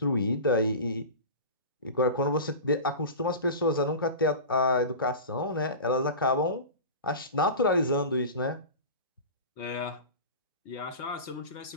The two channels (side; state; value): both; inverted; correlation -0.31